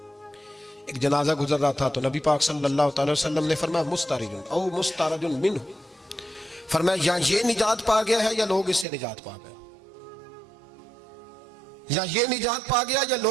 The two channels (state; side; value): drops out; left; at 8.8 s